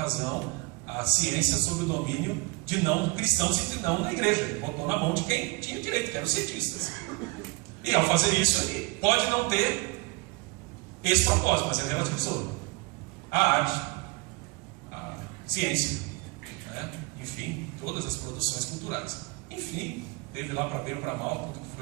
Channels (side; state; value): left; quieter; 24.6 dB